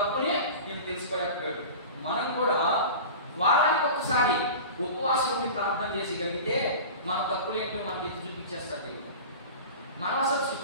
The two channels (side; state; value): both; inverted; correlation -0.34